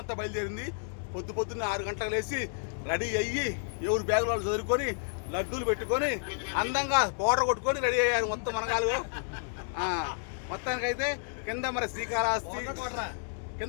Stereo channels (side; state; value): right; silent; digital silence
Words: బయలుదేరింది. పొద్దున్న 6 గంటలకు లేచి రెడీ అయ్యి ఎవరు బ్యాగులు వాళ్ళు చదువుకొని లడ్డూలు పెట్టుకొని అందంగా పౌడర్ కొట్టుకొని రెడీ అయ్యారు మొత్తం మనగాలు. మొత్తానికైతే కింద మరి శ్రీకాళహస్తి